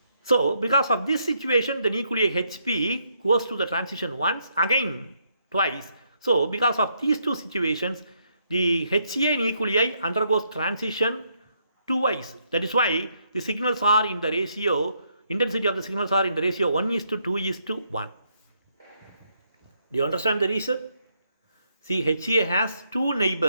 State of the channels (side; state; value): both; inverted; correlation -0.75